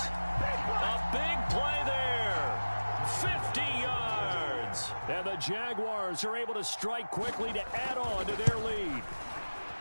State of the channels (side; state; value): both; inverted; correlation -1.00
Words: A big play there. 50 yards. And the Jaguars are able to strike quickly to add on to their lead.